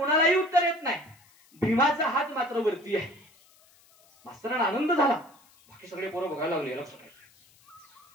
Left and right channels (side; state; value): left; noise; hiss, 29 dB below the sound